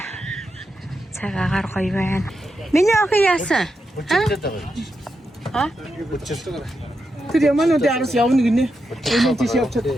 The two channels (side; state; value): both; normal; correlation 0.86